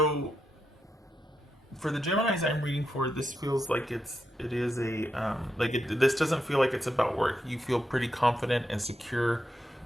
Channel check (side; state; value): both; normal; correlation 0.84